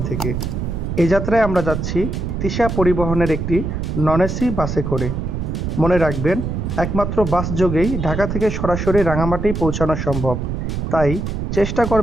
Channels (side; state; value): right; noise; rumble, 3 dB below the sound